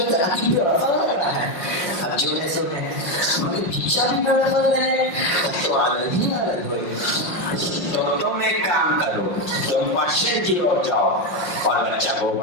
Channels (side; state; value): right; late; 5.4 ms